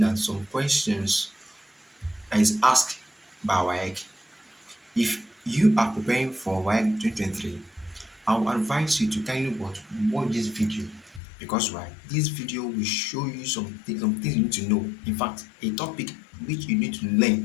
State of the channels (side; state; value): right; drops out; at 11.2 s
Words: at some questions that is asked by WAEC. If you are preparing for WAEC 2023, I will advise you to kindly watch this video because why? This video will show you some things you need to know. In fact, a topic which you need to